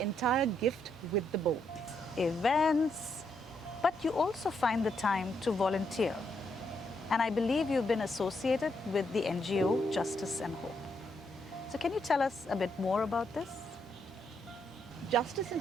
gift with the bow. Events, but you also find the time to volunteer. And I believe you've been associated with the NGO Justice and Hope. So can you tell us a bit more about this? Justice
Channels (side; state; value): both; normal; correlation 0.77